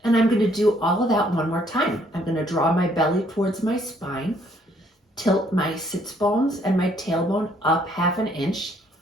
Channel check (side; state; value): both; normal; correlation 0.66